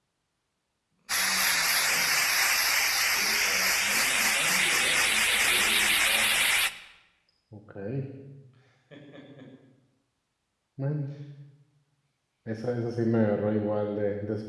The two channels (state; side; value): identical; both; correlation 1.00